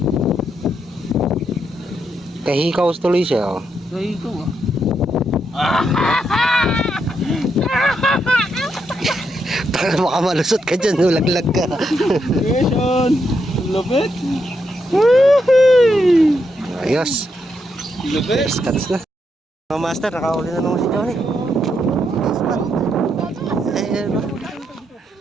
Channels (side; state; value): both; normal; correlation 0.80